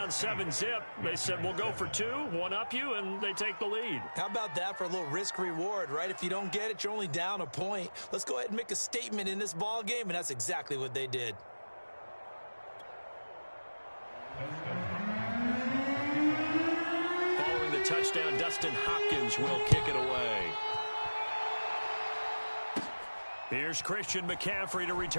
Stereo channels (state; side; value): inverted; both; correlation -1.00